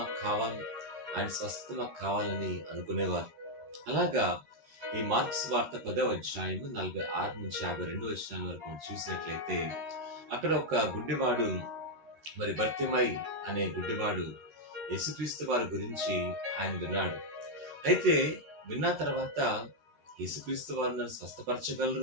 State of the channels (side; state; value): left; late; 13 ms